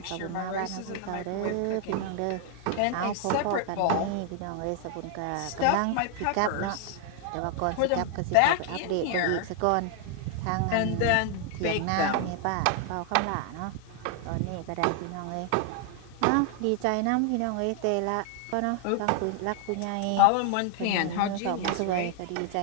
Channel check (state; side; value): different; both; correlation 0.00